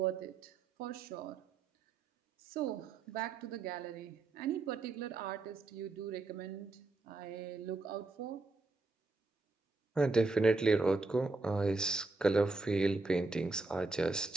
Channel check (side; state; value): left; quieter; 3.5 dB